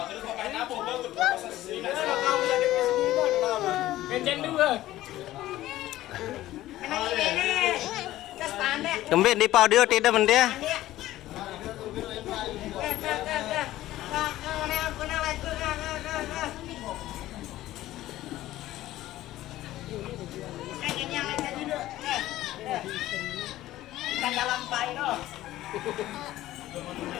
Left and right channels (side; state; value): right; quieter; 15.2 dB